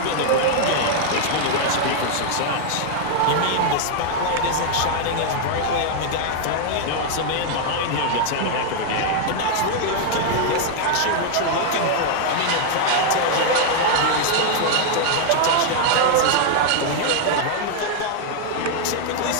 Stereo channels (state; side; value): different; both; correlation 0.00